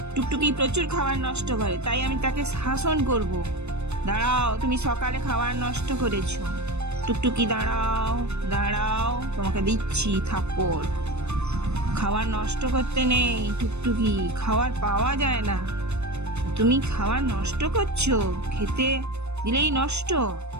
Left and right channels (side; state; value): left; late; 0.81 ms